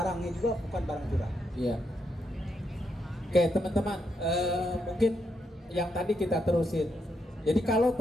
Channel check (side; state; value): both; normal; correlation 0.80